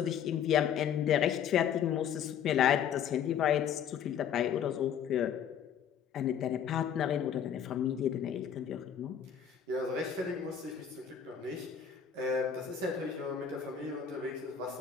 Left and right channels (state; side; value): quieter; right; 8.4 dB